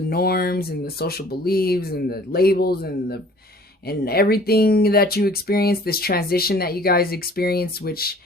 and the social beliefs and the labels and everything that you experienced, this transition that you guys experienced, which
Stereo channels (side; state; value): both; normal; correlation 0.51